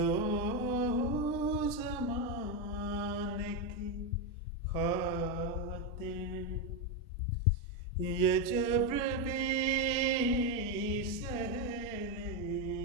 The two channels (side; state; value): both; normal; correlation 0.07